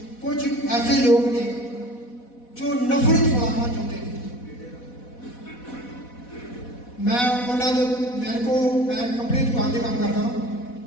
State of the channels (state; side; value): late; right; 4.1 ms